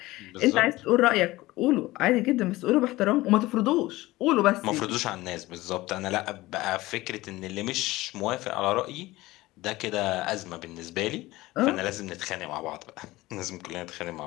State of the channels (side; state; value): right; quieter; 18.7 dB